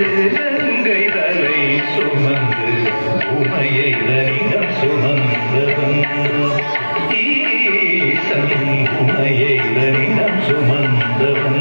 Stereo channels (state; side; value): inverted; both; correlation -1.00